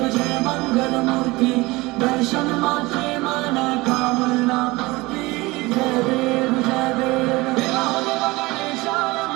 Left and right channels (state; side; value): quieter; left; 21.8 dB